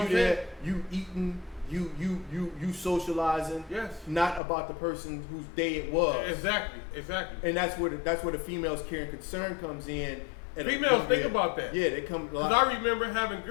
I'm there, saying? you eating, you socializing. Yes. Not about the person whose day it was. Exactly. And that's where the females' care and concern comes in. Females think about that. Yeah, they come. Because I remember having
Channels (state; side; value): drops out; right; at 4.4 s